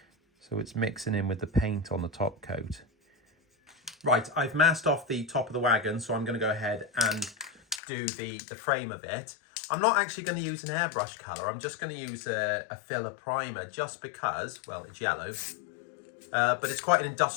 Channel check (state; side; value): drops out; right; at 7.8 s